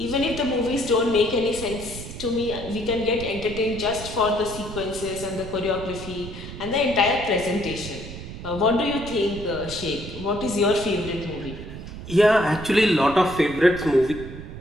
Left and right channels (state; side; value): noise; right; rumble, 11 dB below the sound